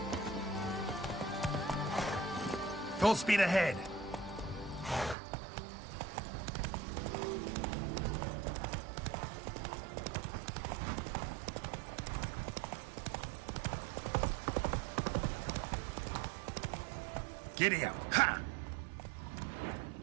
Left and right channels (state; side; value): drops out; left; at 5.2 s